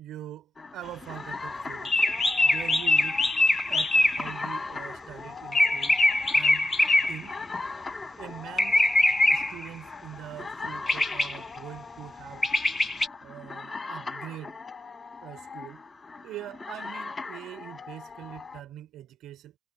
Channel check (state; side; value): normal; both; correlation 0.90